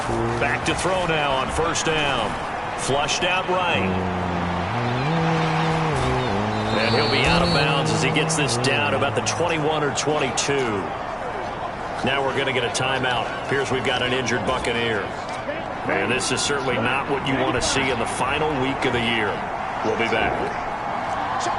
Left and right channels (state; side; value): identical; both; correlation 1.00